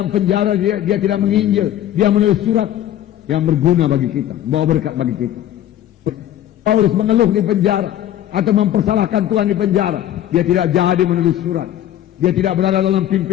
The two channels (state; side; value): quieter; right; 12.1 dB